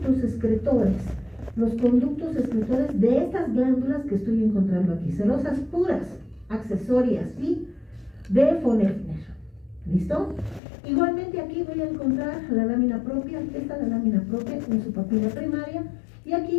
excretores. Los conductos excretores de estas glándulas que estoy encontrando aquí. Serosas puras, accesorias, ¿sí? De von Effner. ¿Listo? Igualmente aquí voy a encontrar la lámina propia. Esta es la lámina propia en su papila primaria. Y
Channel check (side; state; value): right; drops out; at 10.6 s